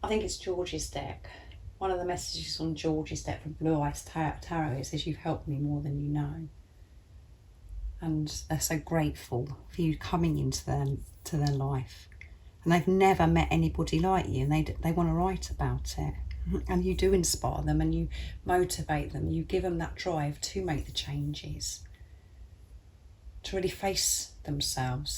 I think it's George's deck. One of the messages on George's deck from Blue Eyes Tarot, it says, you've helped me more than you know. And they're so grateful for you coming into their life. And they've never met anybody like you, and they want to write about it. And you do inspire them, and you motivate them. You give them that drive to make the changes, to really face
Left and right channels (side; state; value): both; identical; correlation 1.00